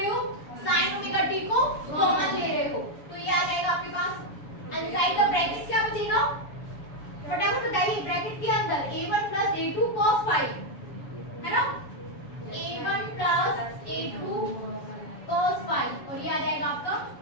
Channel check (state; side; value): late; right; 7.1 ms